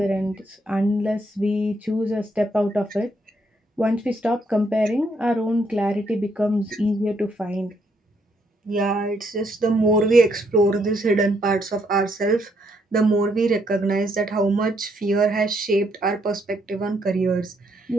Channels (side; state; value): both; normal; correlation 0.73